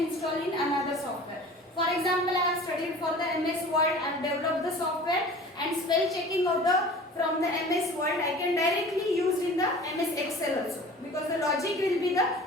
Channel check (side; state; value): both; normal; correlation 0.42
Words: install in another software. For example, I have studied for the MS Word, I have developed the software, and spell checking of the from the MS Word I can directly use in the MS Excel also, because the logic will be the